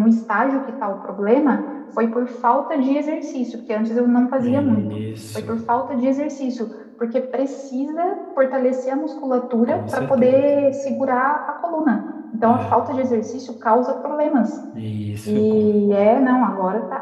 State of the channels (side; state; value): both; identical; correlation 1.00